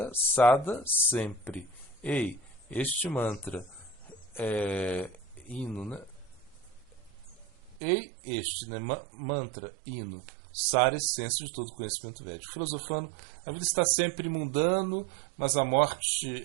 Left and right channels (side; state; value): left; drops out; at 7.8 s